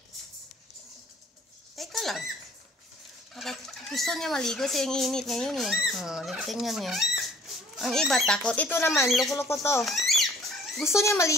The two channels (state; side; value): normal; both; correlation 0.54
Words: Teka lang. Gusto niya maligo kasi ang init ngayon eh. Tingnan niyo. Ang iba takot. Ito naman, loko-loko to. Gusto niya